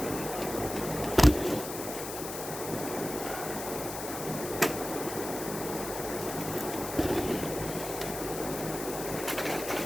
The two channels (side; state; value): left; noise; hiss, 8 dB below the sound